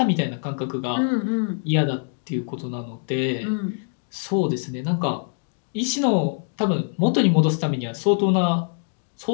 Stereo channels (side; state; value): right; silent; 58 dB below the other